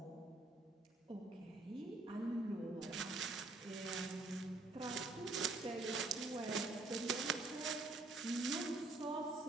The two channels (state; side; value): quieter; left; 3.2 dB